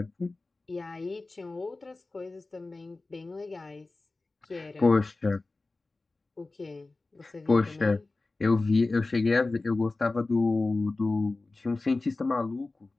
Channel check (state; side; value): quieter; right; 3.3 dB